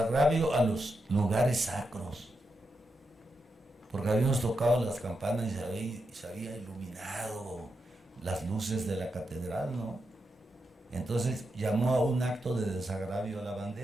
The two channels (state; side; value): normal; both; correlation 0.86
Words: a los lugares sacros, porque habíamos tocado las campanas y se había iluminado las luces de la catedral, ¿no? Entonces llamó a un acto de desagravio a la